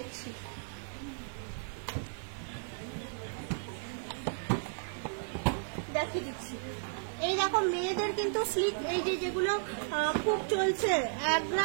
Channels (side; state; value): left; silent; 55 dB below the other